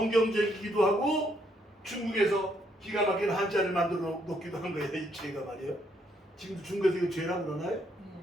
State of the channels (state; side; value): normal; both; correlation 0.72